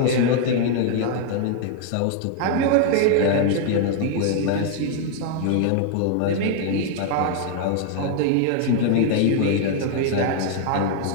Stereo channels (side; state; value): both; different; correlation 0.00